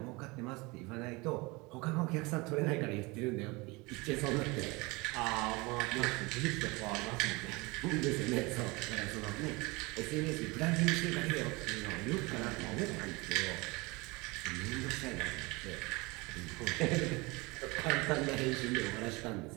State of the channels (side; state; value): left; quieter; 25.0 dB